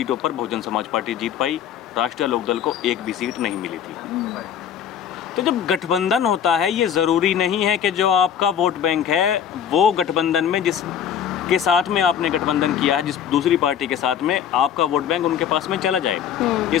पर बहुजन समाज पार्टी जीत पाई। राष्ट्रीय लोकदल को एक भी सीट नहीं मिली थी। तो जब गठबंधन होता है, ये ज़रूरी नहीं है कि जो आपका वोट बैंक है वो गठबंधन में जिस के साथ में आपने गठबंधन किया है, जिस दूसरी पार्टी के साथ में, आपका वोट बैंक उनके पास में चला जाए। ये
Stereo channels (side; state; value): right; quieter; 8.8 dB